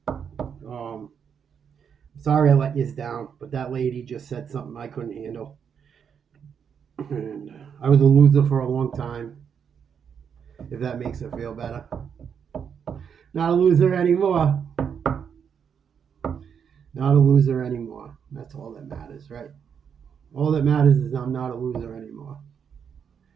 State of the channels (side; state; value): left; quieter; 7.3 dB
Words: Sorry I let you down, but that lady just said something I couldn't handle. And I was a loser for a long time, if that makes her feel better. Not a loser anymore. Not a loser anymore. That's all that matters, right? All that matters is I'm not a loser anymore.